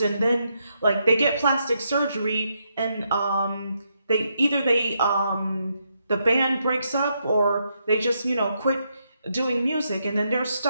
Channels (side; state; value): both; inverted; correlation -0.80